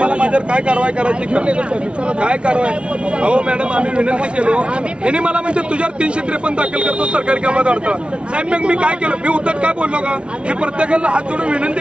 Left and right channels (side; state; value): left; late; 0.059 ms